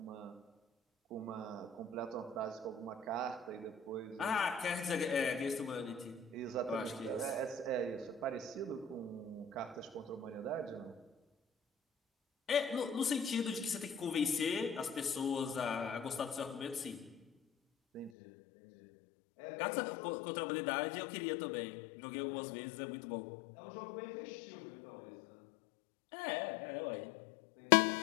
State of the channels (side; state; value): right; drops out; at 18.1 s